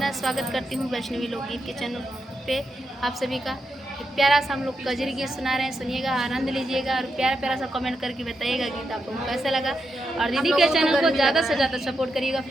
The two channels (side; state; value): both; normal; correlation 0.85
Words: स्वागत करती हूँ वैष्णवी लोकगीत के चैनल पे आप सभी का। एक प्यारा सा हम लोग कजरी गीत सुना रहे हैं, सुनिएगा, आनंद लीजिएगा और प्यारा प्यारा सा कमेंट करके बताइएगा गीत आप लोगों को कैसा लगा। और दीदी के चैनल को ज़्यादा से ज़्यादा सपोर्ट करिएगा